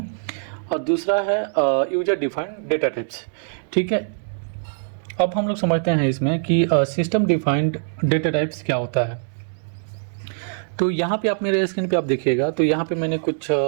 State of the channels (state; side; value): silent; left; 61 dB below the other